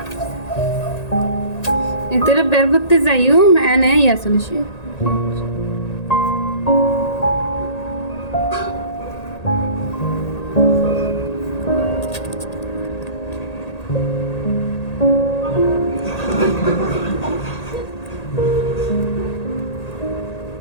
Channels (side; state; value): right; late; 1.8 ms